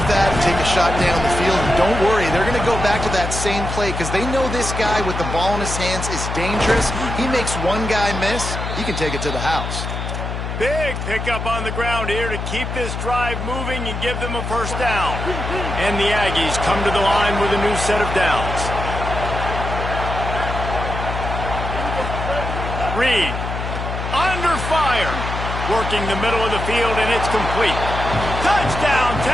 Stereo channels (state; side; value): noise; left; hum, 5 dB below the sound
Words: that and take a shot down the field. And don't worry, they're going to go back to that same play because they know this guy with the ball in his hands is dangerous. He makes one guy miss, he can take it to the house. Big pickup on the ground here to keep this drive moving and give them a first down. And the Aggies come to the line with a new set of downs. Reed, under fire, working the middle of the field, and it's complete. Touchdown,